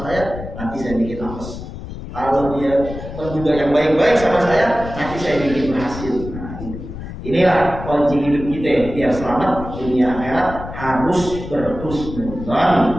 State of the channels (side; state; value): left; noise; rumble, 10 dB below the sound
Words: saya, nanti saya bikin apes. Kalau dia menduga yang baik-baik sama saya, nanti saya bikin berhasil. Inilah kunci hidup kita biar selamat dunia akhirat, harus berhusnudzon,